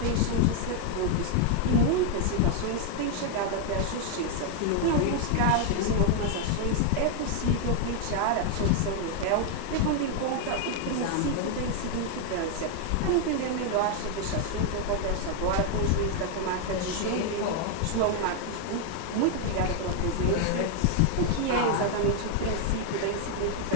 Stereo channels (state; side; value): different; both; correlation 0.00